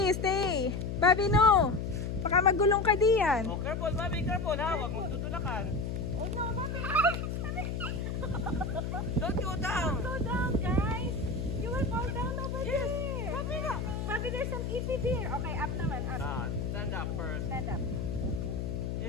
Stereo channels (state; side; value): noise; left; hum, 3 dB below the sound